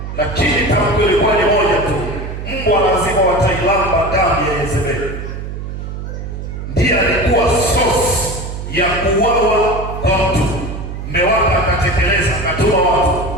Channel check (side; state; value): right; noise; hum, 7 dB below the sound